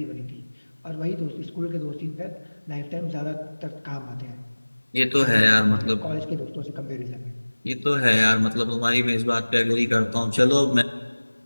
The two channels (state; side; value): inverted; both; correlation -1.00